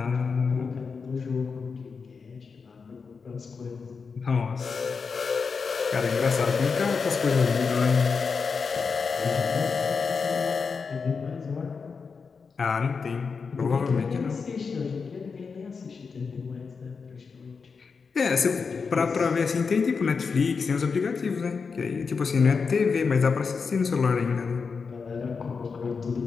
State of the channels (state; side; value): quieter; right; 5.2 dB